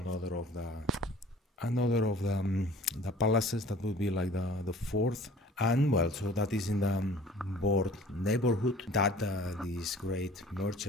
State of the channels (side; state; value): both; normal; correlation 0.48